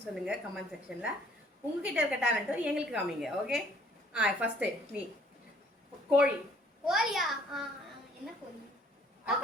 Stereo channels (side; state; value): both; normal; correlation 0.60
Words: சொல்லுங்கள் கமெண்ட் செக்ஷனில். உங்ககிட்ட இருக்க டேலண்ட்டும் எங்களுக்கு காமிங்க, ஓகே? ஃபஸ்ட்டு நீ கோழி. கோழியா? என்ன கோழி?